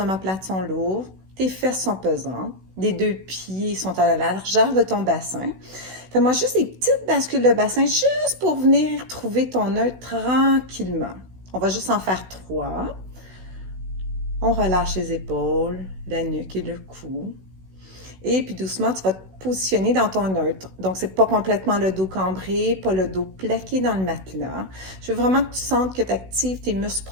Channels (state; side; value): late; left; 16 ms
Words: sont lourdes, tes fesses sont pesantes, les deux pieds sont à la largeur de ton bassin. Fais-moi juste des petites bascules de bassin juste pour venir trouver ton neutre tranquillement. On va juste en faire 3. On relâche les épaules, la nuque et le cou. Et puis doucement, tu vas te positionner dans ton neutre. Donc, c'est pas complètement le dos cambré, pas le dos plaqué dans le matelas. Je veux vraiment que tu sentes que tu actives tes muscles